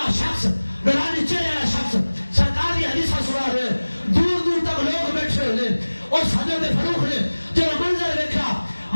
شخص نورانی چہرے والا شخص سرکار کی حدیث سنا رہے دور دور تک لوگ بیٹھے ہوئے اس حضرت فاروق نے جب منظر دیکھا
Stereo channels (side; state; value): both; inverted; correlation -1.00